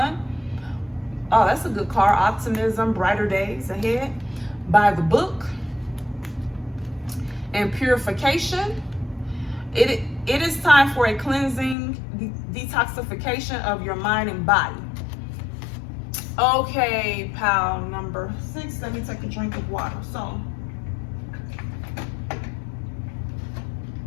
Oh, that's a good card. Optimism, brighter days ahead. By the book. And purification. It is time for a cleansing, detoxification of your mind and body. Okay, pile number 6. Let me take a drink of water. So,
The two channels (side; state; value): right; drops out; at 11.8 s